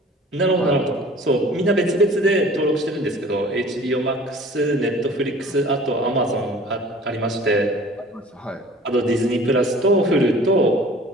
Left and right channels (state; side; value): normal; both; correlation 0.47